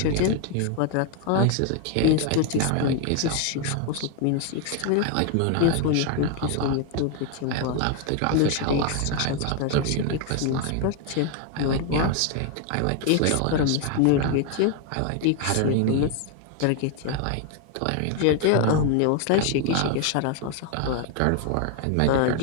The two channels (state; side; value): different; both; correlation 0.01